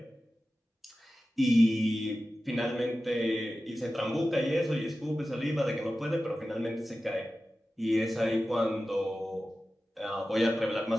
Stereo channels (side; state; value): both; normal; correlation 0.94